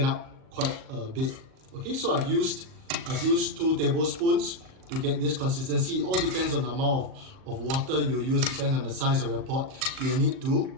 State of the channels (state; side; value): late; left; 38 ms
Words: up quite a bit. Okay, so I've used 2 tablespoons to get this consistency. It all depends on the amount of water you use, depends on the size of your pot. You need to